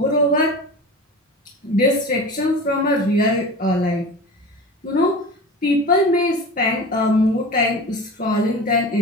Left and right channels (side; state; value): both; normal; correlation 0.33